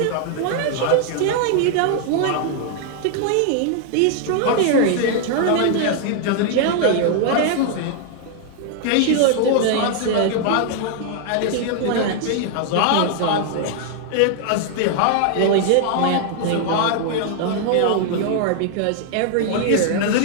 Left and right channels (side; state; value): both; different; correlation 0.00